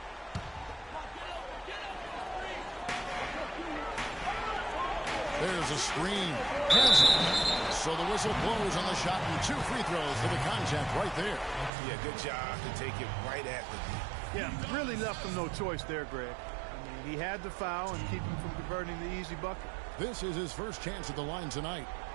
There's a screen. So the whistle blows on the shot and 2 free throws for the contact right there. Yeah, good job to take it right at the knee. Yeah, really left him no choice there, Greg. I mean, he had to foul and keep him from converting the easy bucket. This is his first chance at the line tonight.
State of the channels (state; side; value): drops out; left; at 11.7 s